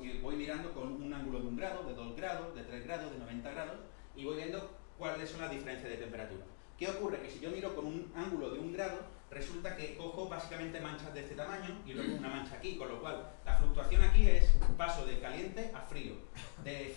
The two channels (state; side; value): silent; right; 52 dB below the other